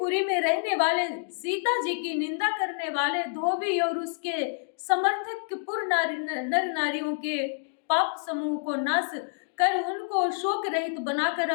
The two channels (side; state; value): right; silent; digital silence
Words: में रहने वाले सीता जी की निंदा करने वाले धोबी और उसके समर्थक पुर नर नारियों के पाप समूह को नाश कर उनको शोक रहित बनाकर